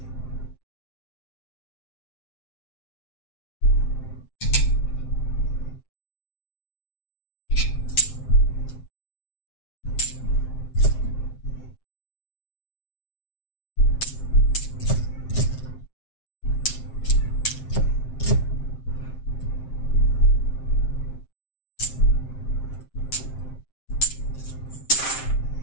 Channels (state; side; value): late; right; 7.6 ms